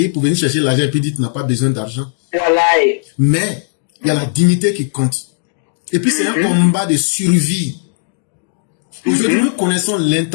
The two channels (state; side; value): silent; right; digital silence